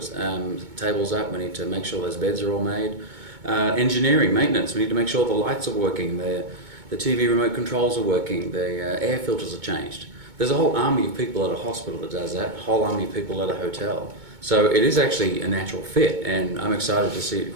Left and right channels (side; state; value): left; late; 2.2 ms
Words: tables up, we need to make sure those beds are all made. Engineering, maintenance, we need to make sure the lights are working, the TV remote controls are working, the air filters are changed. There's a whole army of people at a hospital that does that, a whole army of people at a hotel. So it is actually a natural fit, and I'm excited to see it